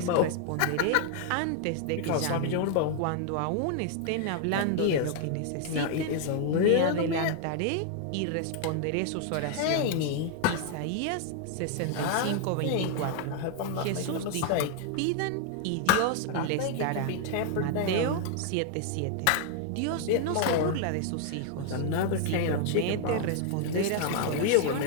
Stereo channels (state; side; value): different; both; correlation 0.00